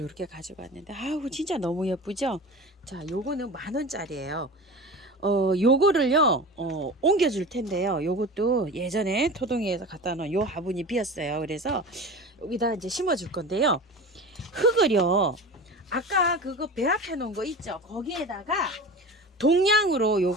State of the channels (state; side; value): normal; both; correlation 0.33